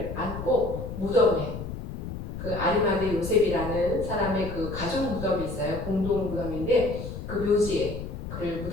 안고 무덤에, 그 아리마대 요셉이라는 사람의 그 가족 무덤이 있어요. 공동 무덤인데 그 묘지에 그를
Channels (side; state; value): left; noise; rumble, 7 dB below the sound